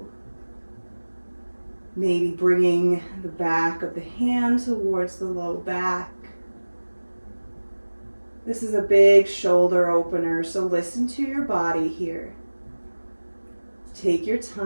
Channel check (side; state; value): both; inverted; correlation -1.00